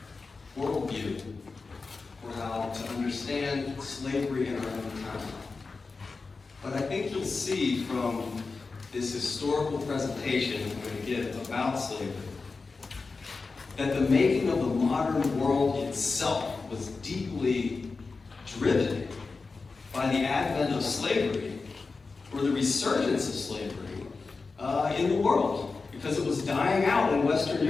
worldview for how to understand slavery in our own time. But I think you'll see from this historical presentation I'm going to give about slavery that the making of the modern world itself was deeply driven by the advent of slavery, or the resurgence of slavery in the world, because it was dying out in Western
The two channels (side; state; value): right; quieter; 4.2 dB